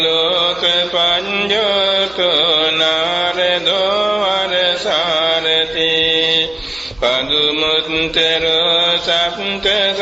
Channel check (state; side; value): noise; right; hum, 28 dB below the sound